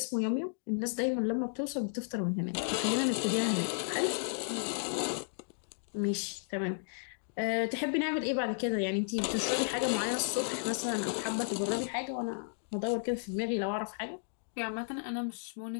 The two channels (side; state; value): right; silent; digital silence